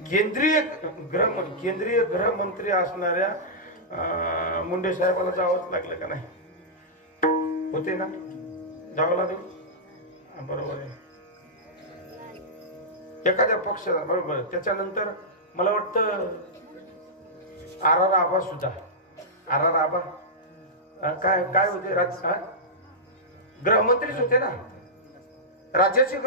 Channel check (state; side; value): normal; both; correlation -0.12